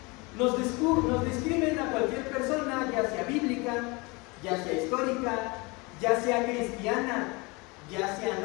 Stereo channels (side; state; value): right; quieter; 26.6 dB